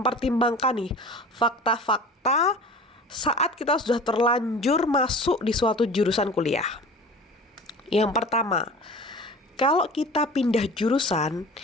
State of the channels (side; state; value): both; normal; correlation 0.39